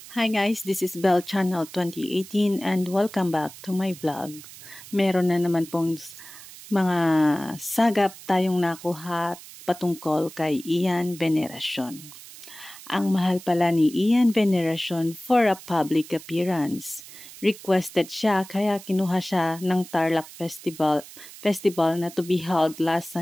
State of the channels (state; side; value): noise; right; hiss, 17 dB below the sound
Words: Hi guys, this is Bell Channel 2018 and welcome back to my vlog. Meron na naman pong mga sagap tayong nakuha patungkol kay Ian Veneracion. Ang mahal pala ni Ian Veneracion for a public appearance. Requested siya kaya kinuha siya ng Tarlac Festival na to be held last